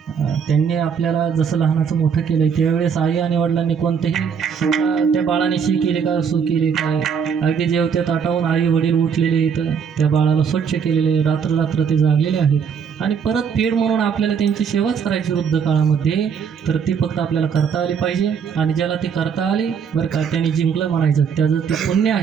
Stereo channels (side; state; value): left; quieter; 6.9 dB